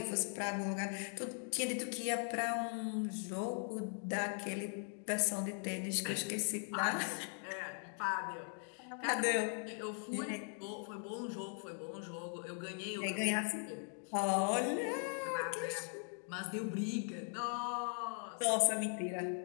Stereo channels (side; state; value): right; silent; 51 dB below the other